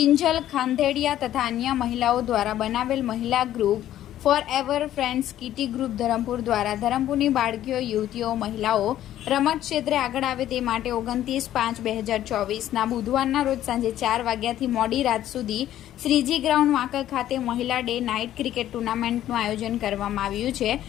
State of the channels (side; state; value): right; quieter; 12.4 dB